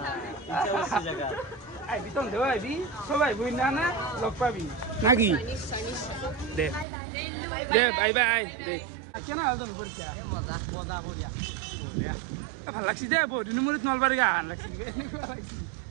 আইবি তন দেও আইবি সবাই বই না না লগ পাবি নাকি দে বাই দে কেন আল তুমি পরীক্ষা মজা বঢ়িয়া ভাল লাগছি দে বহুত দিন মূৰত নলবাৰী গান লাগছি এনেকুৱা লাগছি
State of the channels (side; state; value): left; drops out; at 6.9 s